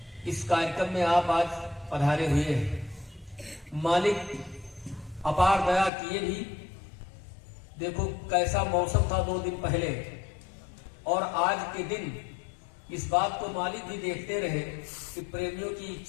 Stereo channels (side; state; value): right; drops out; at 5.9 s